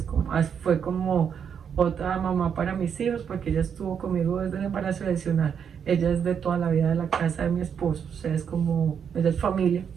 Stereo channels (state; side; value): quieter; left; 7.5 dB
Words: como otra mamá para mis hijos, porque ella estuvo conmigo desde el embarazo adicional. Ella es de toda la vida de la casa de mi esposo, o sea, ella es familia,